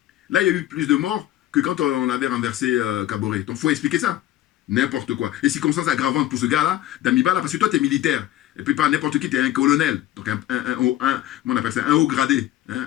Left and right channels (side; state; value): right; quieter; 13.6 dB